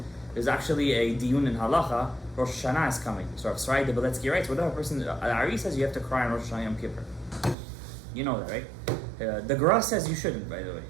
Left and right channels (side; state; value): left; drops out; at 7.6 s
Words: There's actually a diyun in halacha. Rosh Hashanah is coming. So Rav Shalom Gadaev writes, whatever person, Ari says you have to cry on Rosh Hashanah Yom Kippur. You know that, right? The Gra says you shouldn't, by the way.